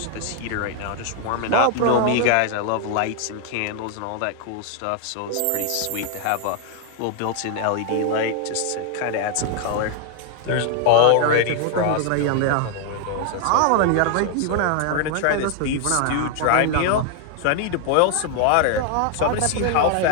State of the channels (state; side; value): different; both; correlation 0.00